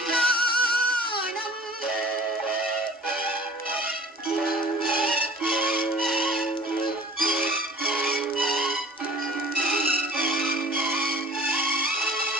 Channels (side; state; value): both; normal; correlation 0.47